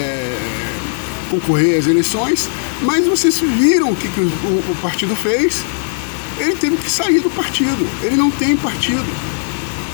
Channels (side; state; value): right; silent; digital silence